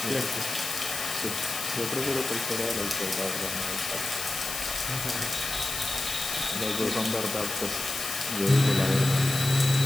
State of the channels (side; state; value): left; noise; hiss, 5 dB below the sound